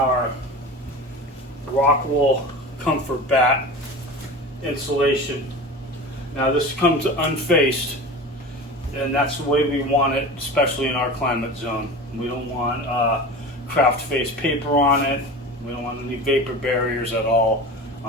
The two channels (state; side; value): normal; both; correlation 0.33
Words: rock wool comfort bat insulation. Now this comes unfaced, and that's the way we want it, especially in our climate zone. We don't want craft face paper on it. We don't want any vapor barriers at all